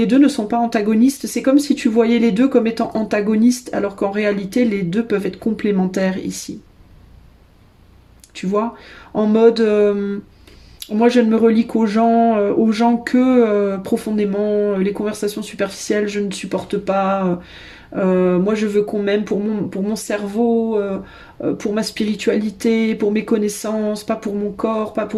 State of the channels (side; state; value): both; identical; correlation 1.00